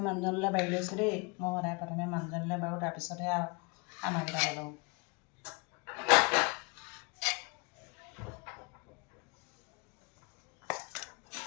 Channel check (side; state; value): right; quieter; 30.3 dB